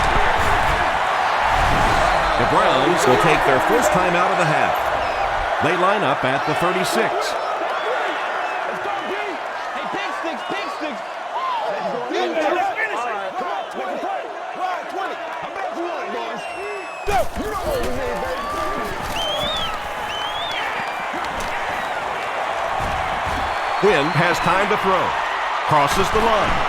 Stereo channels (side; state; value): both; identical; correlation 1.00